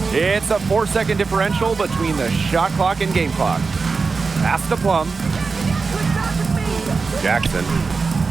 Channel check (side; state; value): left; quieter; 4.5 dB